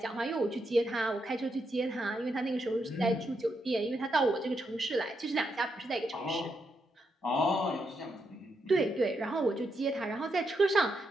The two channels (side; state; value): both; normal; correlation 0.81